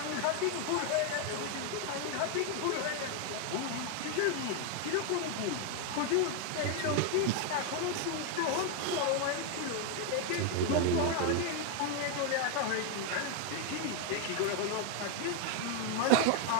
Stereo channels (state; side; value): different; both; correlation 0.01